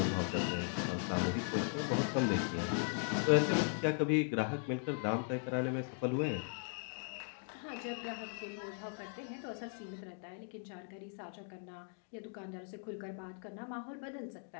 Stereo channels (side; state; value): right; silent; 52 dB below the other